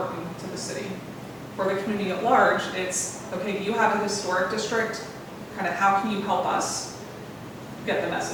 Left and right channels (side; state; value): both; identical; correlation 1.00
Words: to the city? For the community at large, it's, okay, you have a historic district, kind of how can you help us get the